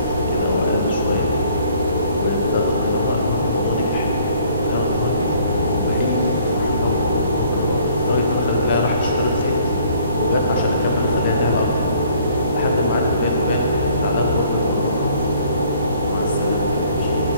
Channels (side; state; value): both; inverted; correlation -0.58